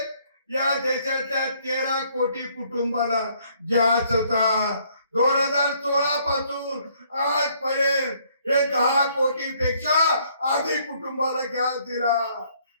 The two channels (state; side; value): inverted; both; correlation -0.65